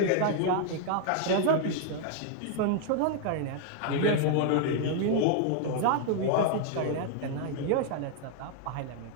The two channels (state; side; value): different; both; correlation 0.00